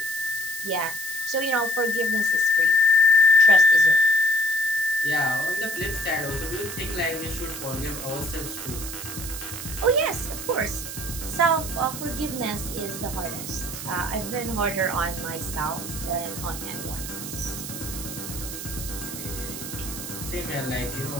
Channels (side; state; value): right; noise; hiss, 8 dB below the sound